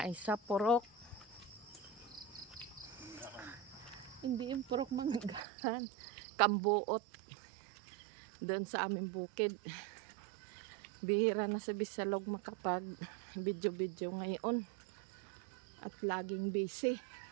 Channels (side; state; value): left; drops out; at 5.4 s